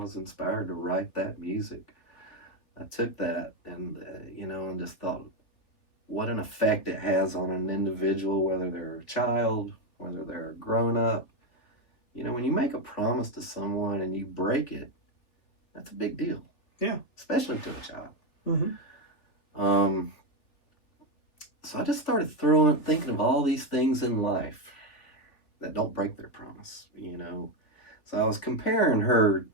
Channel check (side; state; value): right; late; 3.5 ms